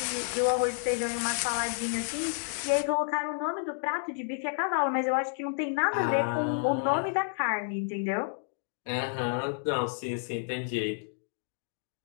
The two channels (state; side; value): silent; right; digital silence